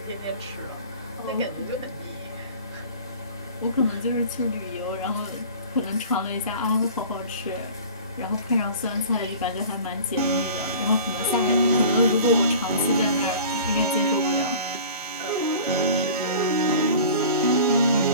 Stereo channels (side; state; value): both; inverted; correlation -0.42